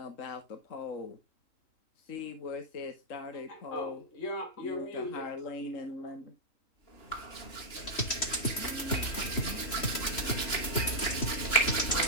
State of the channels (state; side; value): late; right; 3.1 ms